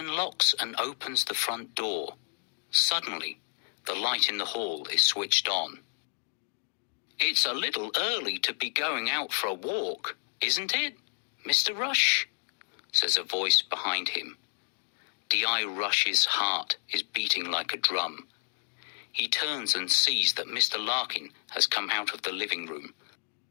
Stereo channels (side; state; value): right; silent; 58 dB below the other